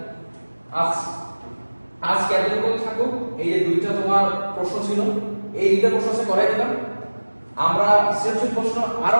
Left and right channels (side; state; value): both; inverted; correlation -1.00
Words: আজ এতটুকু থাকুক। এই যে দুইটা তোমার প্রশ্ন ছিল, এই দুইটা প্রশ্ন আছে করাই দিলাম। আমরা সৃজনশীল প্রশ্ন আরো